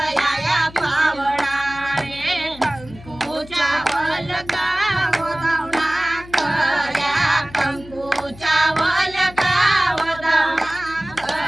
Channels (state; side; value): noise; left; hum, 19 dB below the sound